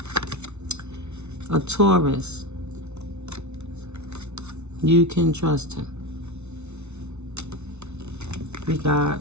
a Taurus. You can trust him. We got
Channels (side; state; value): left; late; 0.81 ms